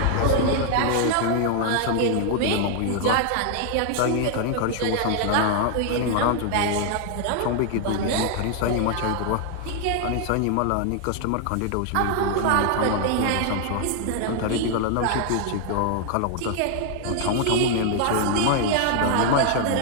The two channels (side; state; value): both; different; correlation 0.00